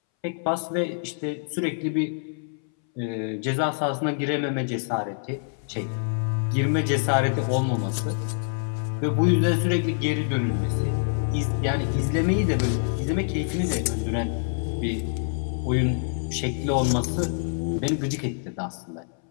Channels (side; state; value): right; silent; 61 dB below the other